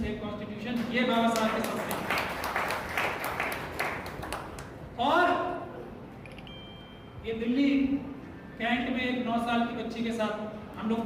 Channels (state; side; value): identical; both; correlation 1.00